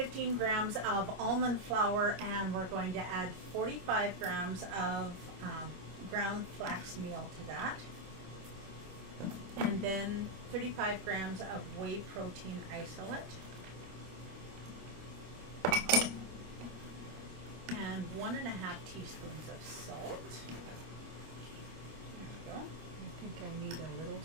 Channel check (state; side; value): late; left; 25 ms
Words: grams of almond flour, and we're going to add 45 grams of ground flax meal to that. And then 35 grams of whey protein isolate. And 1.5 teaspoons of salt. There we go. I think I need a little